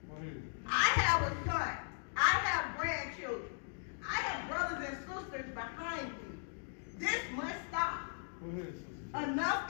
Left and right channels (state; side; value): silent; right; digital silence